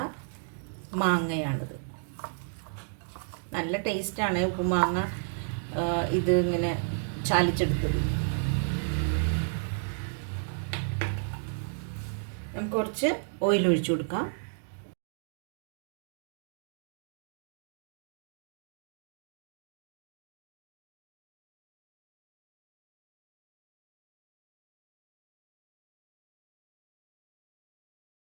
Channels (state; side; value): silent; left; digital silence